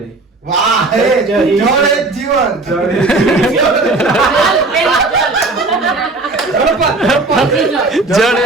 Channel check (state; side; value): quieter; left; 3.3 dB